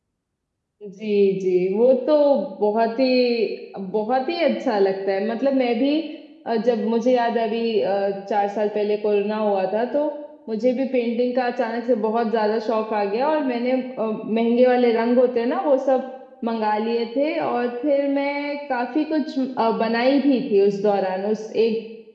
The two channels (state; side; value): identical; both; correlation 1.00